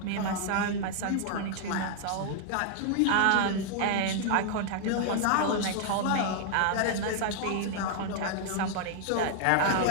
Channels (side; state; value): both; different; correlation 0.00